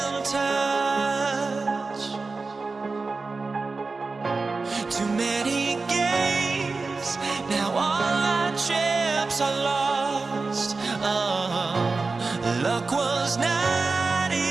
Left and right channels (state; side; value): quieter; left; 4.0 dB